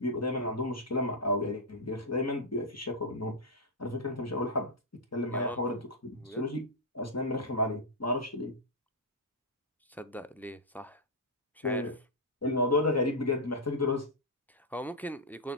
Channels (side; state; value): both; normal; correlation -0.09